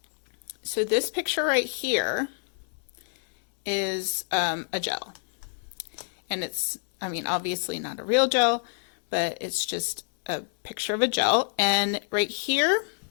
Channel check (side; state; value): right; silent; digital silence